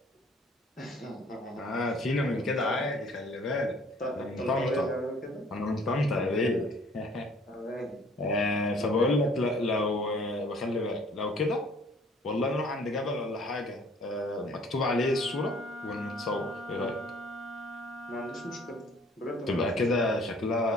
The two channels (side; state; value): both; normal; correlation 0.55